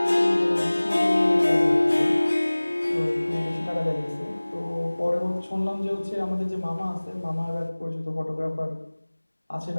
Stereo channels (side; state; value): both; inverted; correlation -1.00